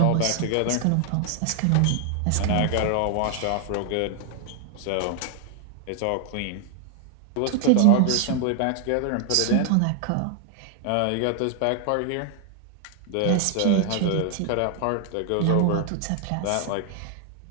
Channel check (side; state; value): both; different; correlation 0.00